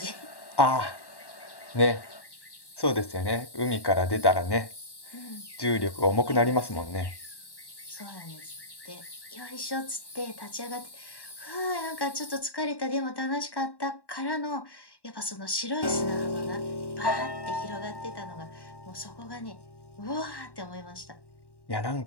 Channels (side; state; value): right; late; 1.1 ms